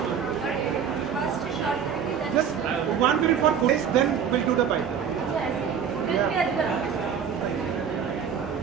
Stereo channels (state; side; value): quieter; left; 7.6 dB